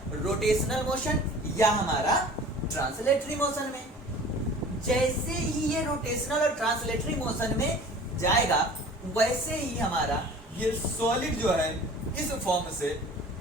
रोटेशनल मोशन या हमारा ट्रांसलेटरी मोशन में। जैसे ही ये रोटेशनल और ट्रांसलेटरी मोशन में जाएगा वैसे ही हमारा ये सॉलिड जो है इस फॉर्म से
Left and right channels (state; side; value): normal; both; correlation 0.43